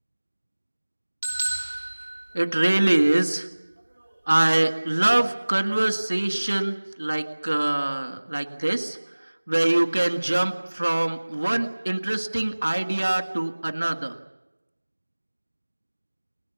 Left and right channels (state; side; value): inverted; both; correlation -1.00